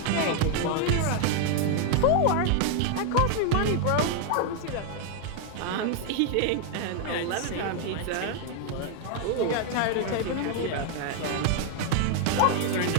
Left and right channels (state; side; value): different; both; correlation 0.00